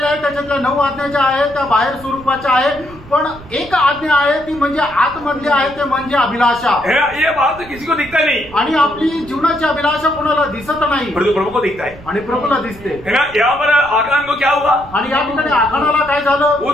आहेत त्याच्यातल्या 9 आज्ञा ज्या आहेत त्या बाहेर स्वरूपाच्या आहेत पण एक आज्ञा आहे ती म्हणजे आतमधली आहे ते म्हणजे अभिलाषा. ये बात किसी को दिखता नहीं. आणि आपली जीवनाची अभिलाषा कोणाला दिसत नाही परंतु प्रभु को दिखता है. आणि प्रभूला दिसते. यहाँ पर आखान को क्या हुआ? आणि या ठिकाणी आखानाला काय झालं?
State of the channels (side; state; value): right; noise; rumble, 19 dB below the sound